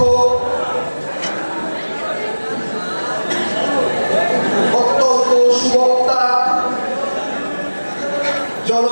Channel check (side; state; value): both; inverted; correlation -1.00